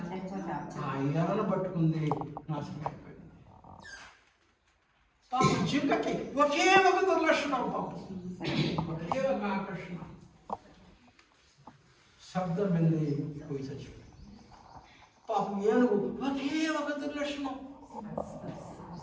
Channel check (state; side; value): identical; both; correlation 1.00